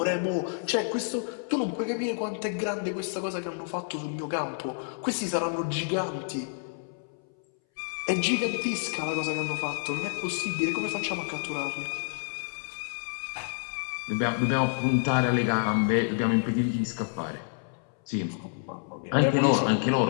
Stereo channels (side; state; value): right; silent; 59 dB below the other